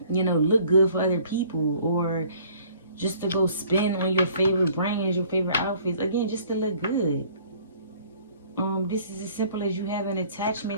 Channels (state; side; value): inverted; both; correlation -0.55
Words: look good for other people, or just to go spend on your favorite brands, your favorite outfits, again, just to look good. This is as simple as you having